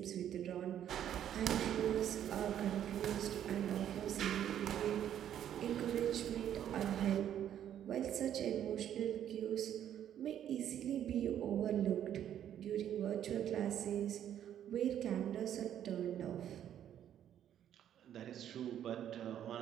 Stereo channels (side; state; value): left; quieter; 10.4 dB